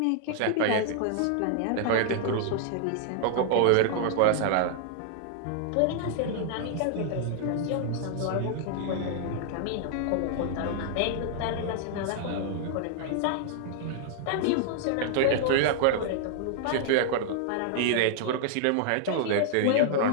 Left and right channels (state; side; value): different; both; correlation -0.01